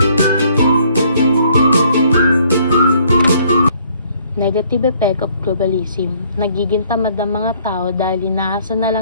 Negative effect of globalism. Nagiging tamad ang mga tao dahil inaasa na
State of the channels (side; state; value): both; inverted; correlation -0.63